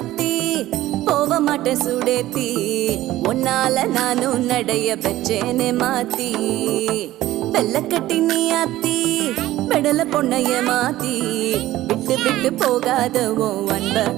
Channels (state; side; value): quieter; left; 15.5 dB